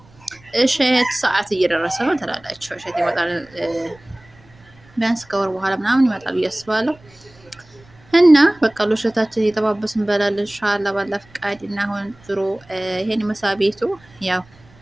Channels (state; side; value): noise; right; rumble, 27 dB below the sound